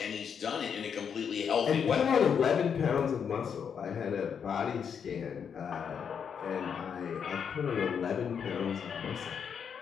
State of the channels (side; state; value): right; quieter; 7.2 dB